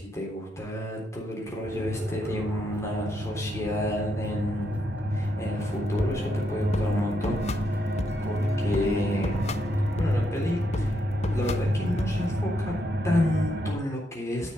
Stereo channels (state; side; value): normal; both; correlation 0.79